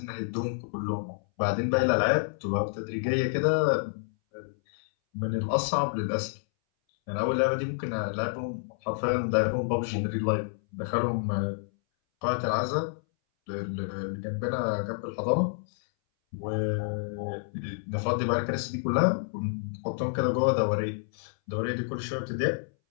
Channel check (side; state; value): right; silent; 59 dB below the other